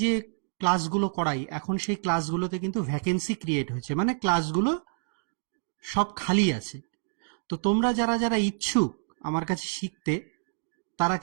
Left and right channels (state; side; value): silent; left; digital silence